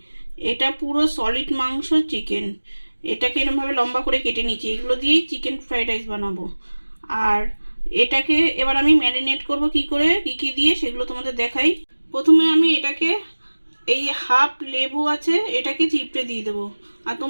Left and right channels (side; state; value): both; inverted; correlation -1.00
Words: এটা পুরো সলিড মাংস চিকেন। এটাকে এরকমভাবে লম্বা করে কেটে নিয়েছি। এগুলো দিয়েই চিকেন ফ্রাইড রাইস বানাবো। আর এটাকে এবার আমি ম্যারিনেট করব কি করে, কি কি দিয়ে সেগুলো তোমাদের দেখাই। প্রথমে আমি এটাকে এই হাফ লেবু আছে, এটাকে চিপড়ে দিয়ে দেবো। আর